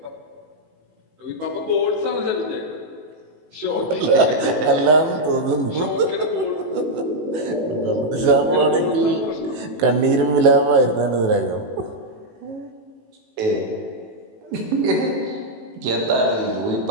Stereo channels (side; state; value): left; late; 18 ms